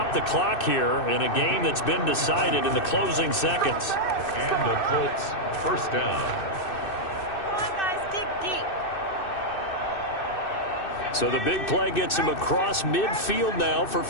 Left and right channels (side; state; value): right; late; 2.6 ms